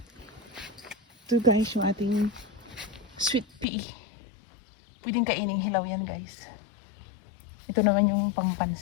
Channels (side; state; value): right; drops out; at 3.7 s